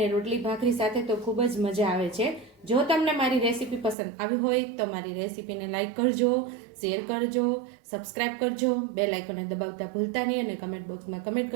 રોટલી ભાખરી સાથે તો ખૂબ જ મજા આવે છે. જો તમને મારી રેસીપી પસંદ આવી હોય તો મારી રેસીપીને લાઈક કરજો, શેર કરજો, સબસ્ક્રાઈબ કરજો, બેલ આઇકોનને દબાવતા ભૂલતા નહીં અને કમેન્ટ બોક્સમાં કમેન્ટ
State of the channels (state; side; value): drops out; left; at 4.0 s